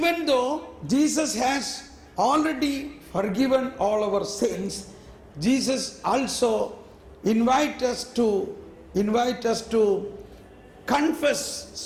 though Jesus has already forgiven all our sins, Jesus also invite us to confess,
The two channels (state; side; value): identical; both; correlation 1.00